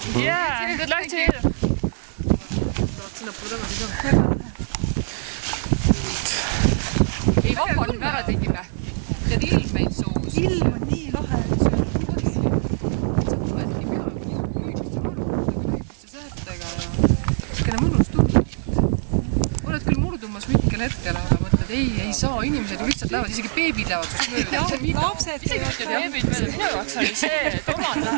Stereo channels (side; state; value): left; silent; 63 dB below the other